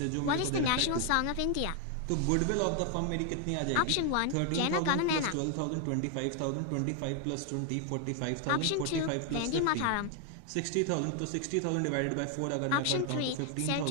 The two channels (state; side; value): different; both; correlation 0.00